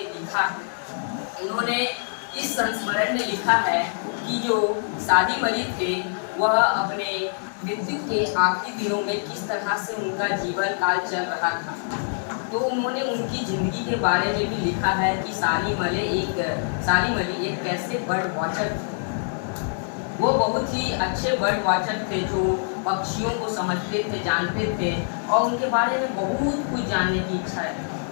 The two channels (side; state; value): right; silent; digital silence